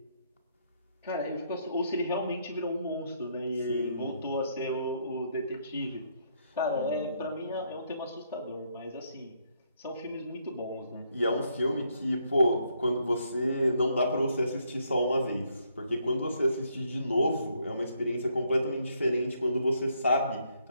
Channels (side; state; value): both; inverted; correlation -0.73